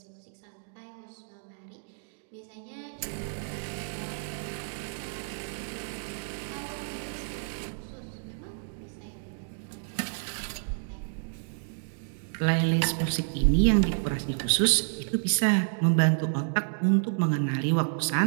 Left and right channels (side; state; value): left; silent; digital silence